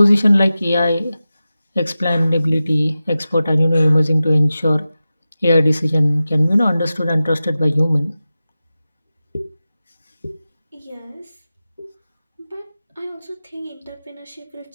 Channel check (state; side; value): inverted; both; correlation -0.94